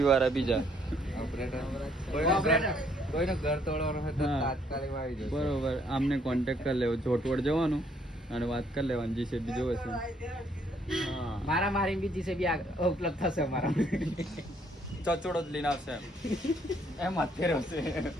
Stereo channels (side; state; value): both; normal; correlation 0.67